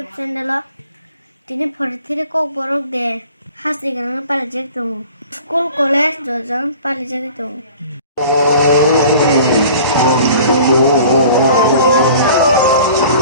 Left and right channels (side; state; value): both; inverted; correlation -0.46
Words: channel tini phorithiri kok borok de hasi gan palijek tung school college jojon palijek tung